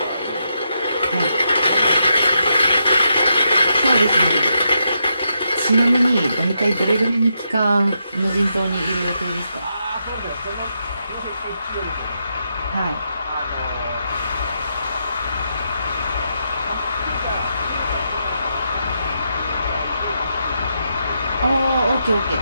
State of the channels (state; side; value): inverted; both; correlation -0.82